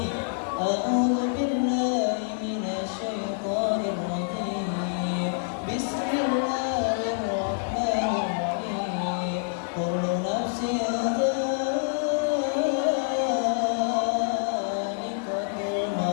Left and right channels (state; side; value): silent; right; digital silence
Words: A'udzu billahi minasyaitonir rajim. Bismillahirrahmanirrahim. Kullu nafsin dha'iqatul